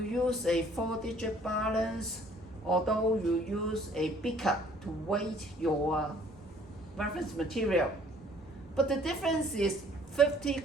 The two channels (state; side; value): normal; both; correlation 0.58